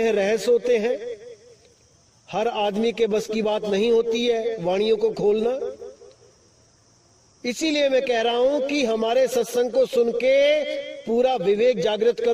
रहस्य होते हैं। हर आदमी के बस की बात नहीं होती है वाणियों को खोलना। इसीलिए मैं कह रहा हूं कि हमारे सत्संग को सुन के पूरा विवेक जागृत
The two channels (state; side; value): identical; both; correlation 1.00